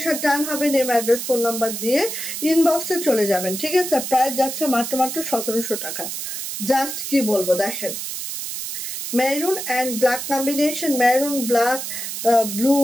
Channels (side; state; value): right; noise; hiss, 6 dB below the sound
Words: ডান হবে, নেম অ্যাড্রেস ফোন নাম্বার দিয়ে ইনবক্সে চলে যাবেন। ঠিক আছে, প্রাইস যাচ্ছে মাত্র 1700 টাকা। জাস্ট কি বলবো, দেখেন maroon and black combination, maroon black blue,